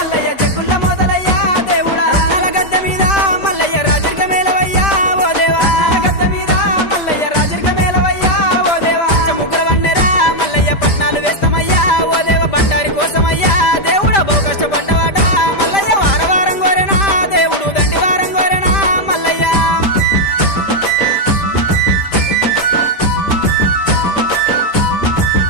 జగ్గుల మోతలయ్యా దేవుడా రత్నాల గద్దె మీద మల్లయ్య రాజరిక మేలవయ్యా ఓ దేవా గద్దె మీద మల్లయ్య రాజరిక మేలవయ్యా ఓ దేవా ముగ్గుల వండెరా మల్లయ్య పట్నాలు వేస్తామయ్యా ఓ దేవ బండారి కోసమయ్యా దేవుడా బహు కష్టపడ్డవాట మల్లయ్య వారవారం గోరెనా దేవుడు దండివారం గోరెనా మల్లయ్య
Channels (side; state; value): right; late; 5.0 ms